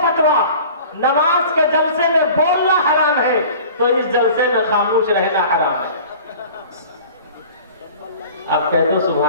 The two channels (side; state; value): both; inverted; correlation -0.43